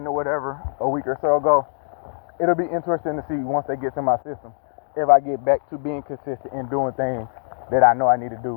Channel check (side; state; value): right; silent; digital silence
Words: or whatever a week or so ago, it'll be interesting to see once they get to my system if I get back to being consistent in doing things that I know I need to